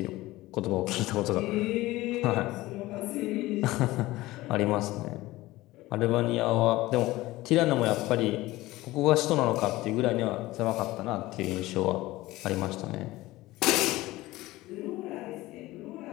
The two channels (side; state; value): right; quieter; 18.3 dB